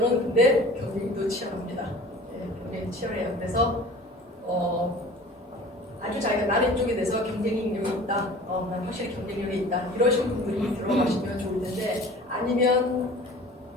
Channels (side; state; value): both; normal; correlation 0.44